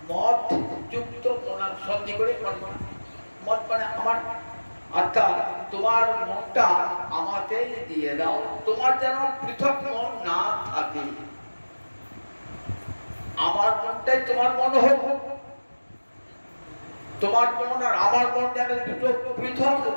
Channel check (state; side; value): inverted; both; correlation -1.00